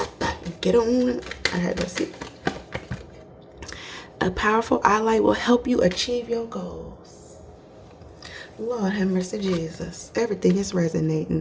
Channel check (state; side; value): identical; both; correlation 1.00